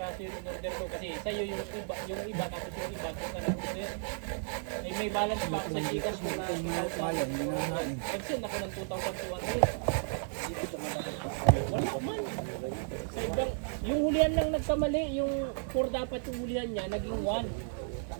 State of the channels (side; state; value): left; silent; 55 dB below the other